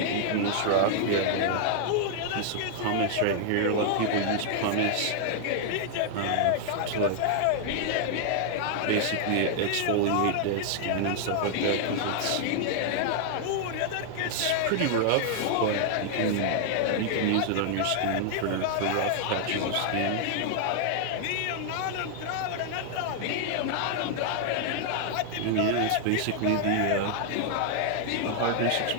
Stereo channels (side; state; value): both; different; correlation -0.01